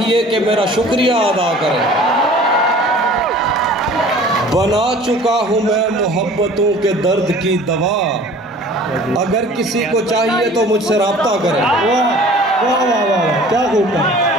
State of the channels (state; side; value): normal; both; correlation 0.47